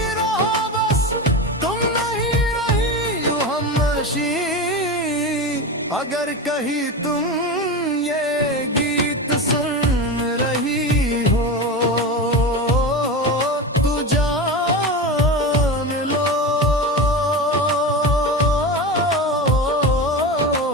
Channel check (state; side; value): normal; both; correlation 0.23